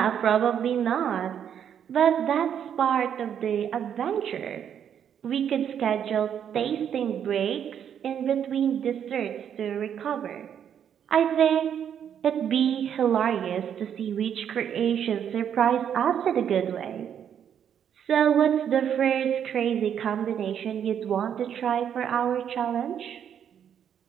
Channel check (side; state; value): left; quieter; 8.8 dB